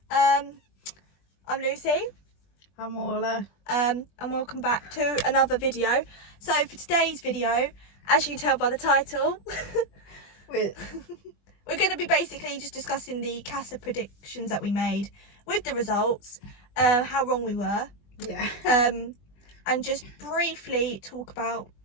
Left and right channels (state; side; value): late; right; 20 ms